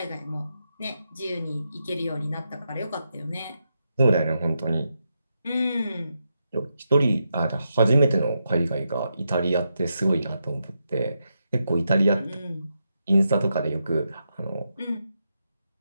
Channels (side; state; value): both; inverted; correlation -0.85